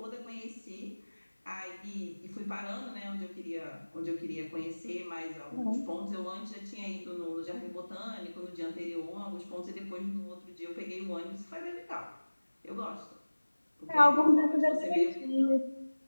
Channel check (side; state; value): both; inverted; correlation -1.00